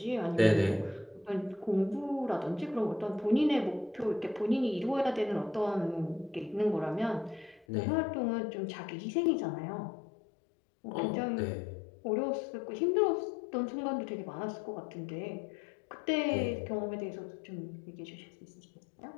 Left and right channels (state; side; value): drops out; right; at 7.7 s